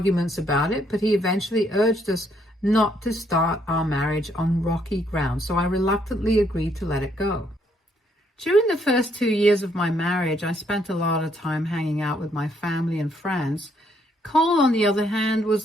about it, but he eventually urged us not to start our marriage on rocky ground, so I reluctantly agreed to let it go. During the first 2 years of my marriage, I spent a lot of time hanging out with my family and friends. Cole, on the other hand,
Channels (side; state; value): both; normal; correlation 0.71